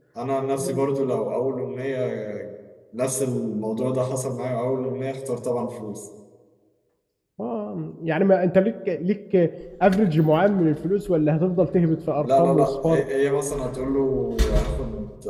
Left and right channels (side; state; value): both; identical; correlation 1.00